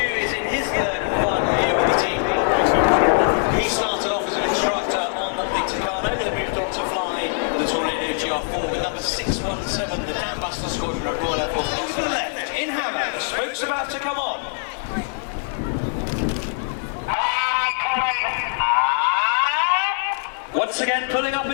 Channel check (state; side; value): silent; right; 55 dB below the other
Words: is in his third and final year with the team. He started off as an instructor on the Tucano, then moved on to fly the Tornado GR4 with number 617, the Dam Buster Squadron at Royal Air Force. Over to the left, in Hammer, the spoke's about to come on. Once again, pulling up